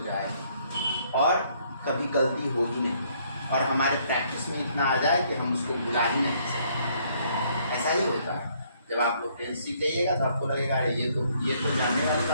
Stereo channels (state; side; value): inverted; both; correlation -0.67